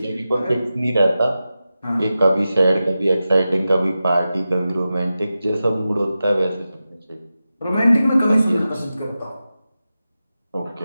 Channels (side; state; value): both; inverted; correlation -0.93